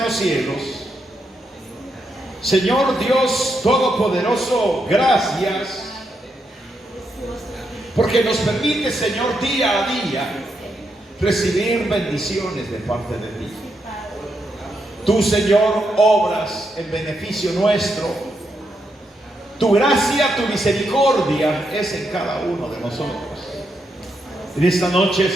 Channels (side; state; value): both; normal; correlation 0.81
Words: los cielos, Señor Dios Todopoderoso, gracias porque nos permite, Señor, día a día recibir bendiciones de parte de ti. Tú, Señor, obras en beneficio nuestro. Tu gracia, tu misericordia es en cada uno de nosotros. En esta noche,